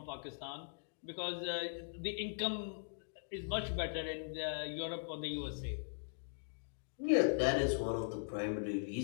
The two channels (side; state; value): right; silent; digital silence